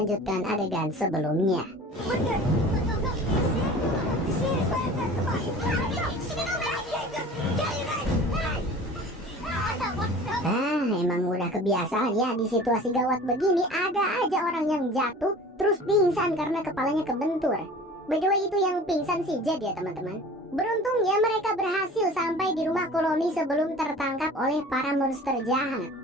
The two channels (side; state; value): both; normal; correlation 0.42